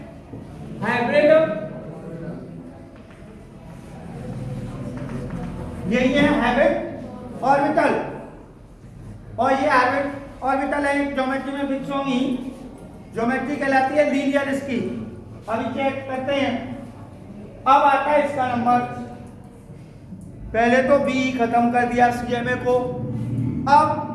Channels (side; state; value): both; identical; correlation 1.00